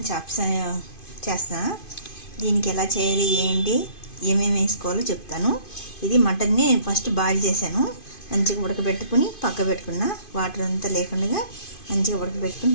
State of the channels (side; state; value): right; late; 2.5 ms